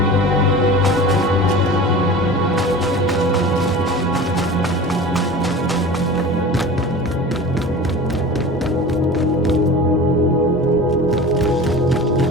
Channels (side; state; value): both; normal; correlation 0.36